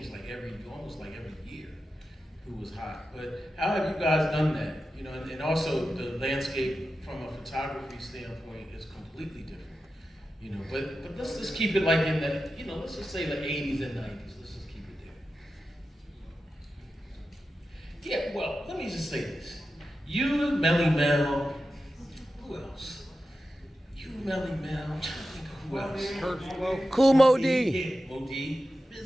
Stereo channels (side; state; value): both; normal; correlation 0.92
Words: like almost like every year who was hot. But how have you guys done that? And also the landscape from a photography standpoint is completely different. But let's just keep it like in the, let's just say the 80s and 90s. Let's just keep it there. Yeah, well, let me just say this. You, Melly Mel, who else? You, Melly Mel, who else? Cool Mo D. Yeah, Mo D.